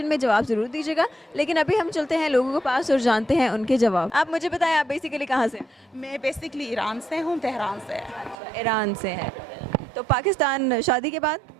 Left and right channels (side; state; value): left; drops out; at 8.3 s